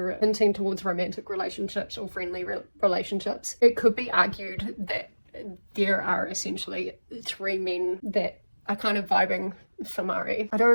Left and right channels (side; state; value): both; inverted; correlation -1.00